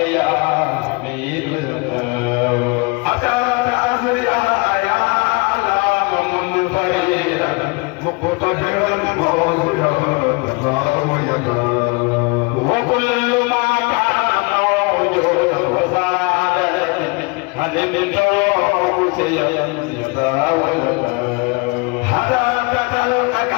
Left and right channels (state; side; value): quieter; right; 28.6 dB